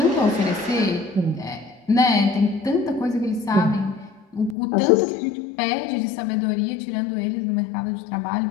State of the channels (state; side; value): drops out; right; at 4.5 s